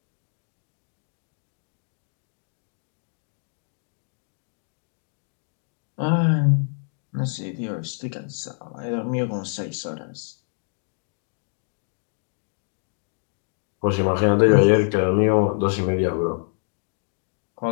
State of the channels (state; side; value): silent; right; digital silence